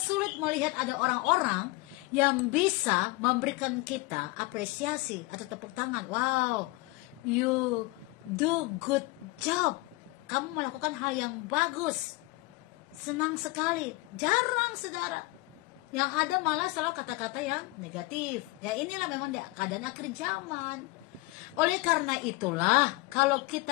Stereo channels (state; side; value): quieter; right; 22.9 dB